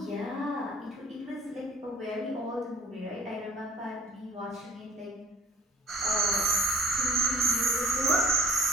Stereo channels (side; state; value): both; normal; correlation 0.50